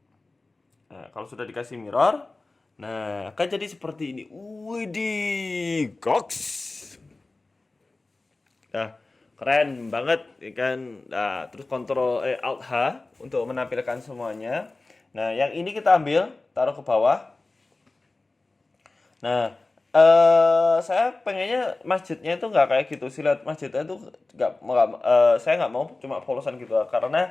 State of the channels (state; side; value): quieter; right; 3.3 dB